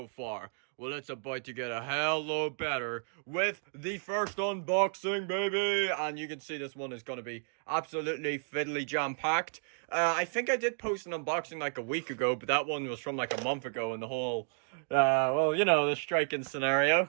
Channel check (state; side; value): silent; left; digital silence